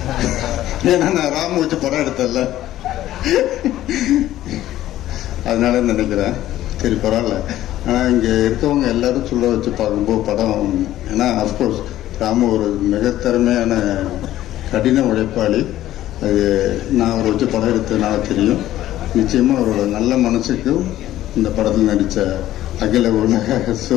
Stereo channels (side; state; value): right; quieter; 13.8 dB